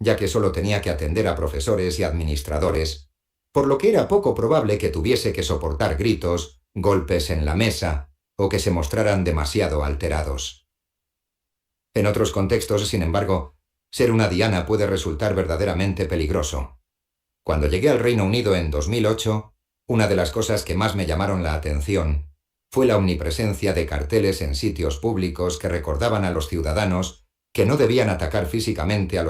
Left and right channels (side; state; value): both; identical; correlation 1.00